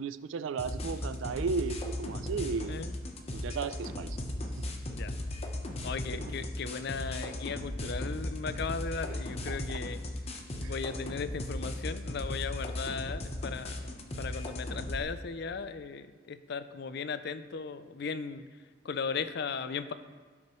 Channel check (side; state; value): both; normal; correlation 0.35